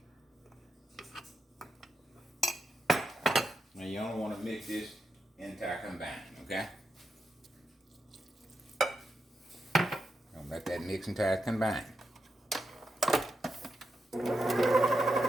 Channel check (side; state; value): both; normal; correlation 0.86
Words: Now you only want to mix this entire combined, okay? Don't let that mix entire combine. Now